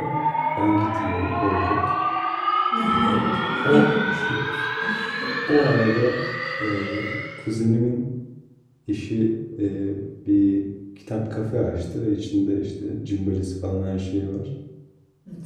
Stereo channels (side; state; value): both; identical; correlation 1.00